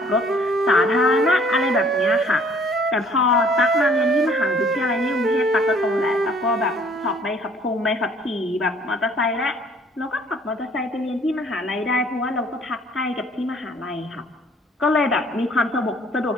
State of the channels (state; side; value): normal; both; correlation 0.58